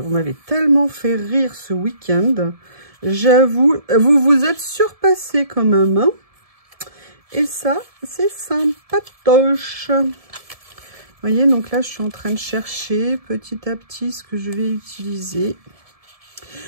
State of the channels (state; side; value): late; left; 1.7 ms